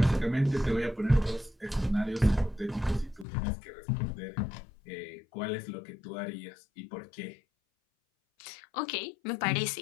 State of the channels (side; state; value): right; drops out; at 3.2 s